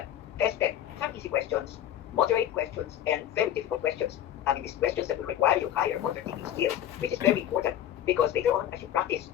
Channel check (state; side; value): quieter; right; 11.2 dB